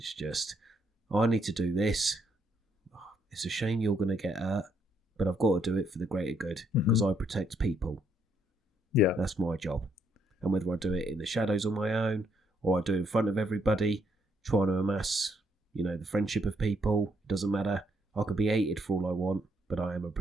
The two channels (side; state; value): both; normal; correlation 0.73